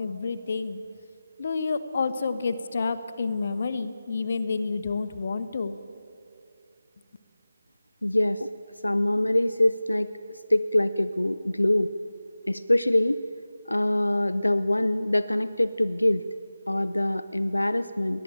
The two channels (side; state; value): both; inverted; correlation -0.97